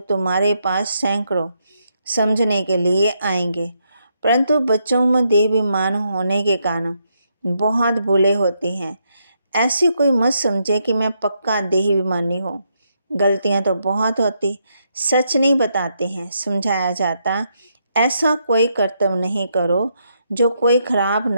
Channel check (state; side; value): inverted; both; correlation -0.78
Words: तुम्हारे पास सैकड़ों समझने के लिए आएंगे। परंतु बच्चों में देहाभिमान होने के कारण बहुत भूलें होती हैं। ऐसी कोई मत समझे कि मैं पक्का देहाभिमानी हूँ। गलतियाँ तो बहुत होती, सच नहीं बताते हैं, समझाया जाता। ऐसा कोई कर्तव्य नहीं करो जो कोई खराब